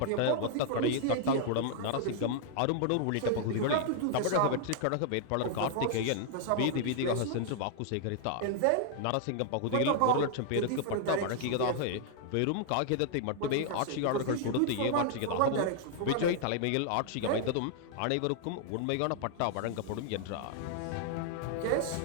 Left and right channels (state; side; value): different; both; correlation 0.00